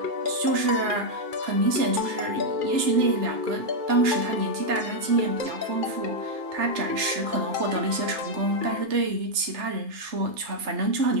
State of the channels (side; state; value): left; late; 3.3 ms